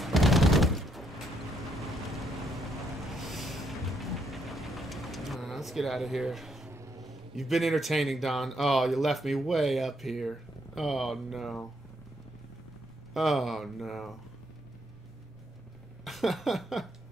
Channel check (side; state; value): both; normal; correlation 0.74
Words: Let's get out of here. You've been entertaining, Don. Oh, you left me way up here. Oh, no. Oh, no.